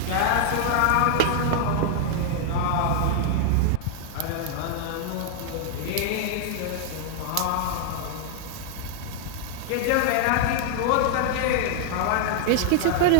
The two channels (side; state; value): both; different; correlation -0.01